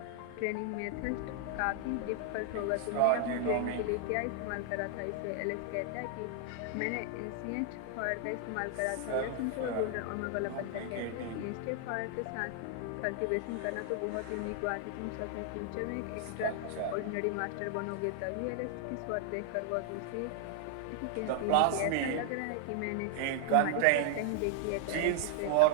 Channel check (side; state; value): both; different; correlation 0.00